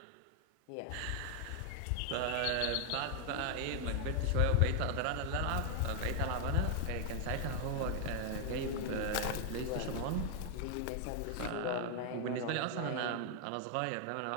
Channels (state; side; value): different; both; correlation 0.00